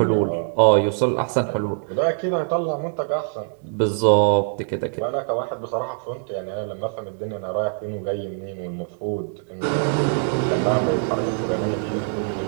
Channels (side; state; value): left; silent; 63 dB below the other